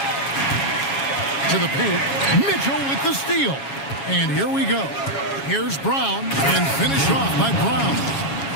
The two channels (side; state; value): right; late; 7.3 ms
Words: To the paint. Mitchell with the steal. And here we go. Here's Brown. And finished off by Brown.